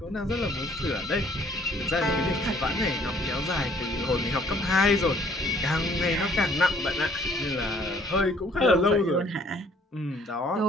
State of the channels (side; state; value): both; normal; correlation 0.60